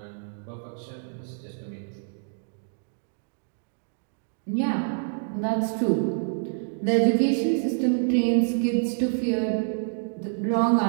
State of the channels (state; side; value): silent; left; digital silence